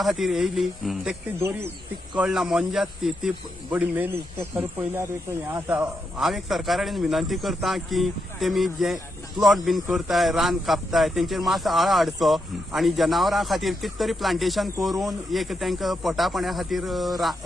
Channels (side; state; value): both; normal; correlation 0.83